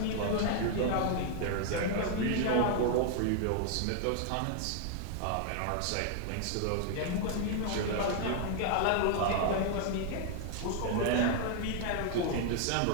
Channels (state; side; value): different; both; correlation 0.00